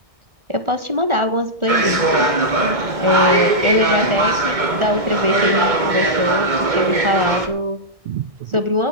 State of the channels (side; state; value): left; late; 2.2 ms